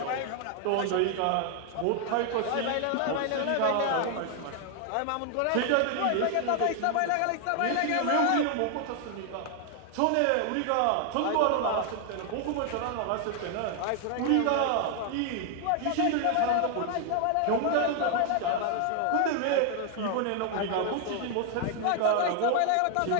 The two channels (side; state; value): both; different; correlation 0.00